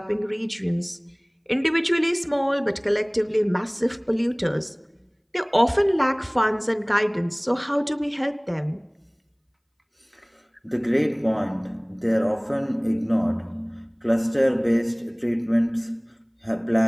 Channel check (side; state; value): both; identical; correlation 1.00